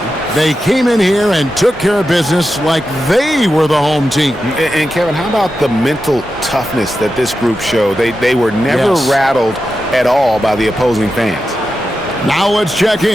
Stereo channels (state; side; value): normal; both; correlation 0.90